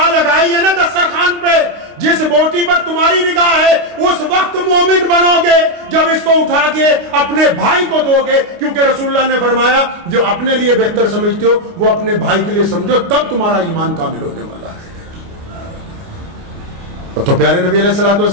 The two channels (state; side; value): late; left; 29 ms